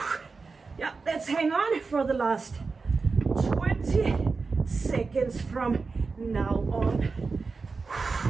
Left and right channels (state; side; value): quieter; left; 4.4 dB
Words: Yeah, let's hang on for the last 20 seconds from now on.